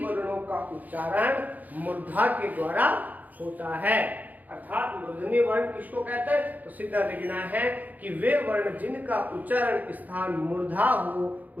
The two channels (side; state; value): left; late; 0.081 ms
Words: वर्णों का उच्चारण मूर्धा के द्वारा होता है। अर्थात मूर्धन्य वर्ण किसको कहते हैं, तो सीधा लिखना है कि वे वर्ण जिनका उच्चारण स्थान मूर्धा हो